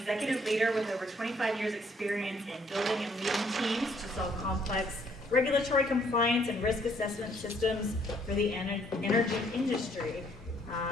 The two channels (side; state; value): both; normal; correlation 0.66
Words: leader with over 25 years experience in building and leading teams to solve complex regulatory compliance and risk assessment systems for the energy industry.